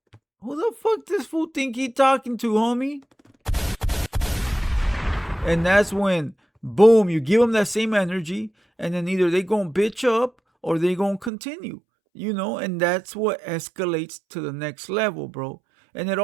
Who the fuck this fool think he talking to, homie? And that's when, boom, you give them that same energy, and then either they gonna bitch up or they gonna continue, you know? And that's what escalates to the next level, bro. And it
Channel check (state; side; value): drops out; left; at 11.3 s